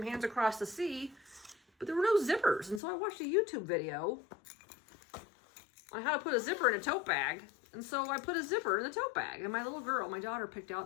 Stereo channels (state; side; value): drops out; right; at 2.8 s